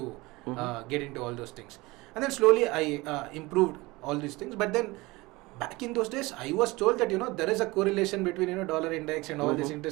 get into all those things. And then slowly I improved all these things. But then back in those days, I was told that there is a correlation between dollar index and all this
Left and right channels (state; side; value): quieter; left; 22.0 dB